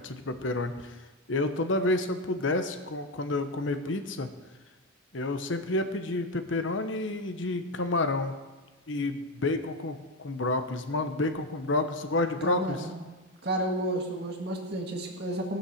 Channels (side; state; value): both; normal; correlation 0.11